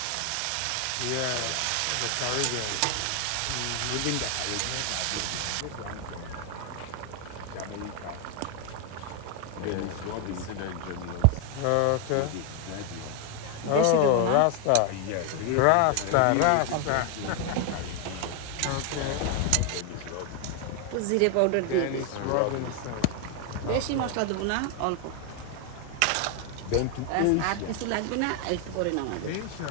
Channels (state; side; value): different; both; correlation 0.01